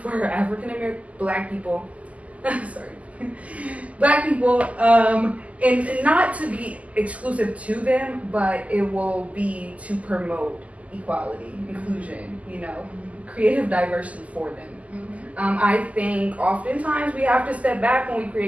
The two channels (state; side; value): late; left; 0.070 ms